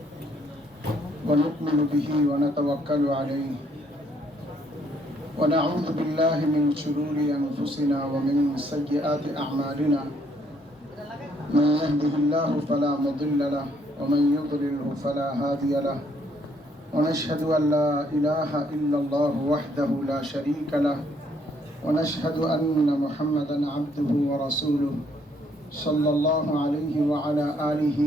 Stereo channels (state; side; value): normal; both; correlation 0.68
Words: ونؤمن به ونتوكل عليه ونعوذ بالله من شرور أنفسنا ومن سيئات أعمالنا من يهده الله فلا مضل له ومن يضلله فلا هادي له ونشهد أن لا إله إلا الله وحده لا شريك له ونشهد أن محمدا عبده ورسوله صلى الله عليه وعلى آله